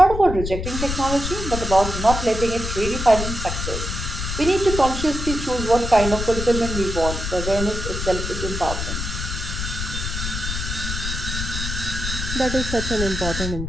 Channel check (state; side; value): noise; left; rumble, 4 dB below the sound